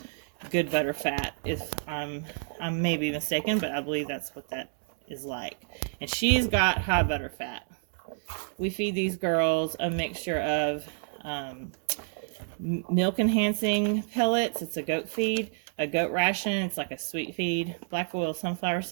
good butter fat. If I may be mistaken, but I believe that's what that is like. And she's got high butter fat. We feed these girls a mixture of milk enhancing pellets. It's a goat feed, a goat ration. It's like a sweet feed, black oil sunflower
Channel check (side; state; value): left; silent; digital silence